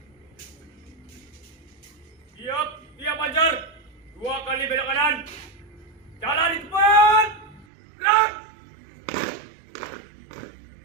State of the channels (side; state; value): left; drops out; at 7.7 s